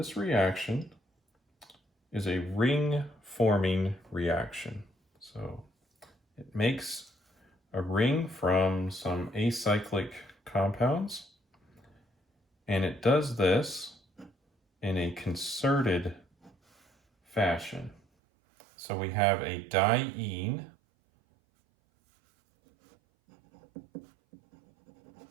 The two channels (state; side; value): drops out; left; at 18.0 s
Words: reaction is a ring-forming reaction. So it makes a ring from some acyclic compounds, and it does this in a concerted fashion. So we have a diene